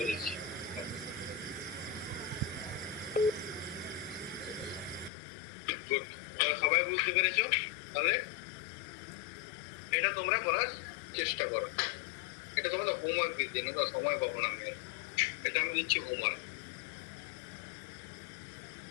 সবাই বুঝতে পেরেছো? তাহলে এটা তোমরা করার চেষ্টা করো। এটা তোমরা হোমওয়ার্ক দিচ্ছি না, সময় পাবো না আমি, এটা আমি দিচ্ছি হোমওয়ার্ক।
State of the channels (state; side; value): drops out; right; at 5.1 s